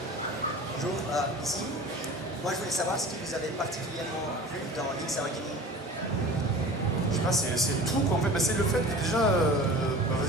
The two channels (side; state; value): both; normal; correlation 0.39